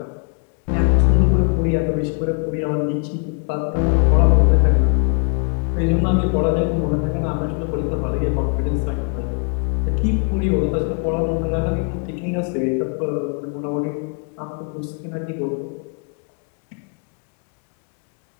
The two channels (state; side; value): quieter; right; 39.8 dB